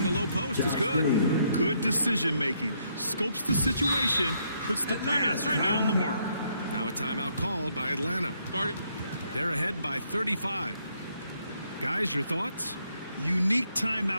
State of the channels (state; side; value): inverted; both; correlation -0.73